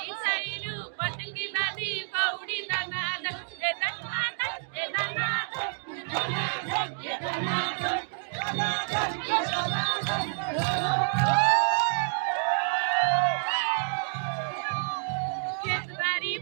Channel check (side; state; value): left; silent; digital silence